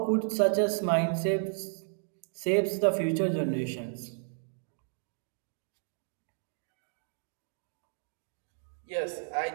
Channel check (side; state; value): left; silent; digital silence